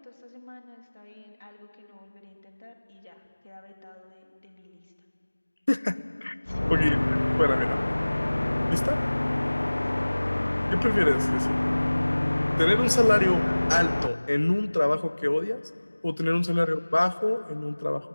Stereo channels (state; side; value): inverted; both; correlation -1.00